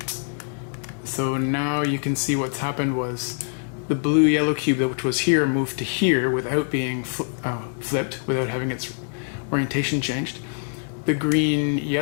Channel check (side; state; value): right; silent; 62 dB below the other